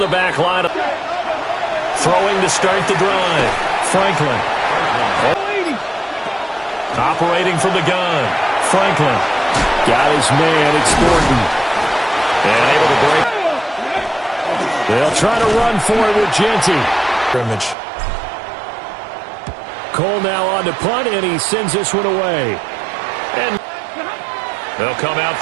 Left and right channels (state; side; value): drops out; left; at 17.8 s